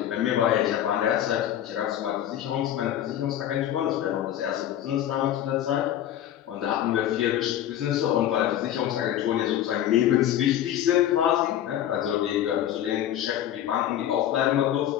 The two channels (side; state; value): right; quieter; 11.4 dB